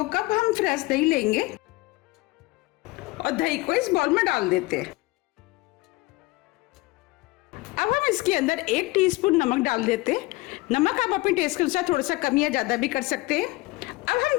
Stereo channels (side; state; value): right; quieter; 21.6 dB